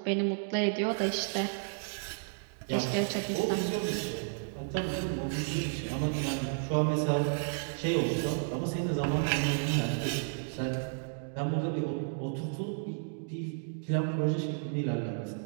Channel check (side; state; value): left; silent; digital silence